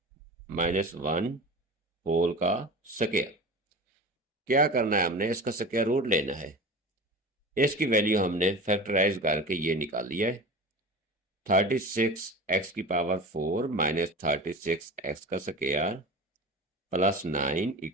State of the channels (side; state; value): both; normal; correlation 0.33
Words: माइनस 1 होल का स्क्वायर। क्या करना है, हमने इसका स्क्वायर रूट लेना है। इसकी वैल्यू हमने फैक्टराइज करके ये निकाल लिया है। 36 एक्स की पावर 4 माइनस 36 एक्स का स्क्वायर प्लस 9